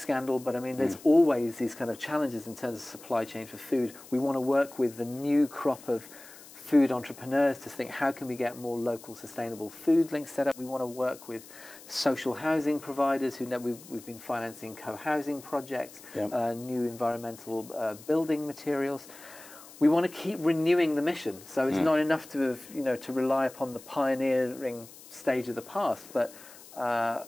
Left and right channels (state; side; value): noise; left; hiss, 19 dB below the sound